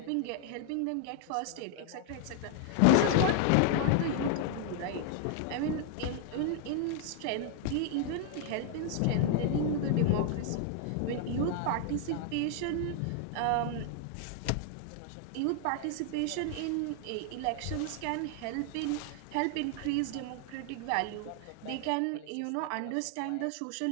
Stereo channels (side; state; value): both; different; correlation 0.00